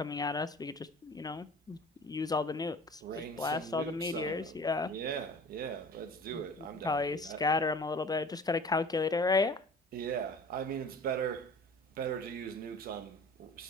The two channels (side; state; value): both; normal; correlation 0.43